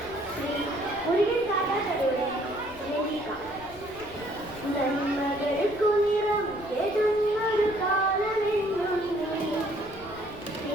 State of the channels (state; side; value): noise; left; rumble, 19 dB below the sound